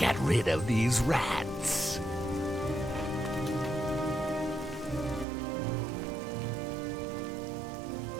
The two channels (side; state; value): left; drops out; at 5.2 s